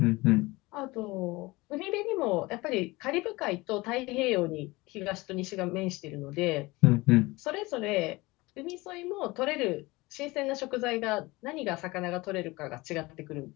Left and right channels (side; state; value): right; quieter; 22.0 dB